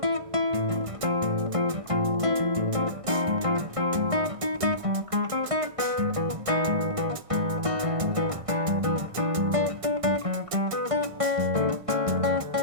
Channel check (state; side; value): late; left; 1.6 ms